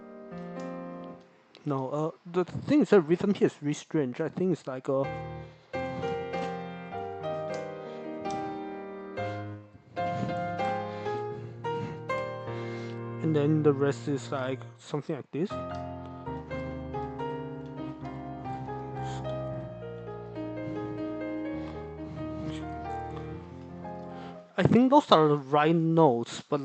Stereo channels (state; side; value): identical; both; correlation 1.00